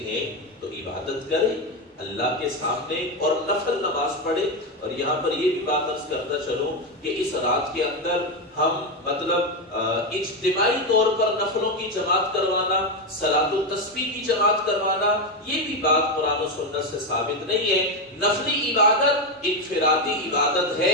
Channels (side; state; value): both; normal; correlation 0.10